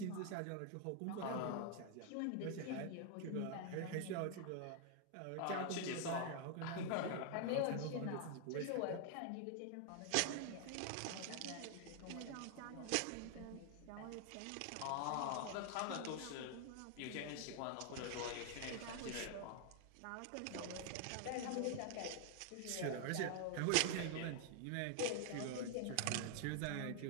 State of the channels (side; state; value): both; different; correlation 0.00